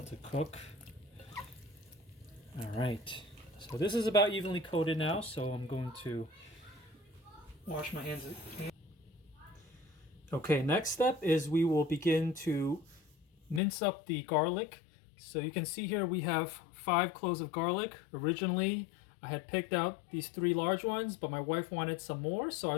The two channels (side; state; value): right; drops out; at 13.6 s